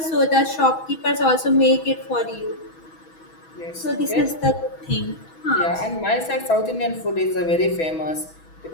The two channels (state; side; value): late; right; 6.1 ms